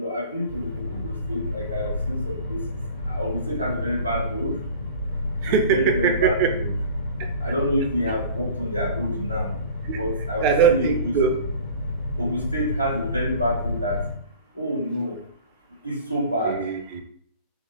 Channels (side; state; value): both; inverted; correlation -0.43